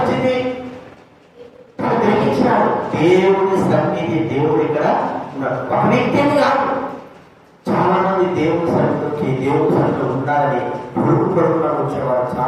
గ్రహించినాడు దేవుడి సన్నిధి. దేవుడు ఇక్కడ ఉన్నాడు. ఒక వ్యక్తిని కాదు, చాలా మంది దేవుడి సన్నిధికి దేవుడి సన్నిధిలో ఉండాలని పొరుగు పొరుగున వచ్చేవారు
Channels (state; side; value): identical; both; correlation 1.00